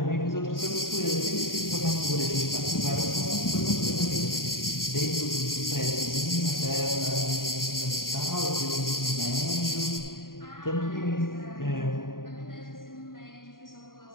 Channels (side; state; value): right; late; 0.91 ms